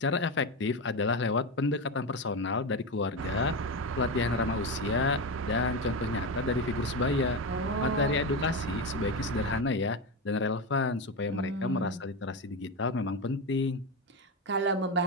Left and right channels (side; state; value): both; normal; correlation 0.16